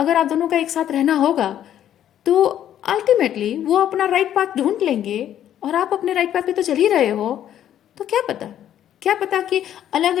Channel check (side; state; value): right; quieter; 10.8 dB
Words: आप दोनों का एक साथ रहना होगा तो अल्टीमेटली वो अपना राइट पाथ ढूंढ लेंगे और आप अपने राइट पाथ पे तो चल ही रहे हो। तो क्या पता कि अलग